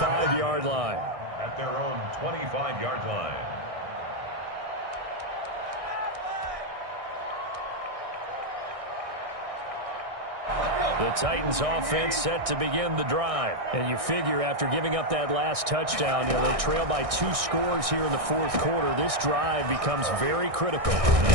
line. At their own 25-yard line. The Titans offense set to begin the drive. And you figure after giving up that last touchdown, they trail by 2 scores here in the fourth quarter. This drive becomes very critical.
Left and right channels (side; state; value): left; late; 1.6 ms